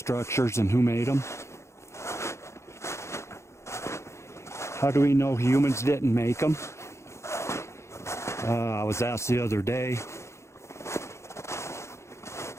and who made them. How do we know humans didn't make them? I was asked the other day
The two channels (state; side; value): late; right; 0.13 ms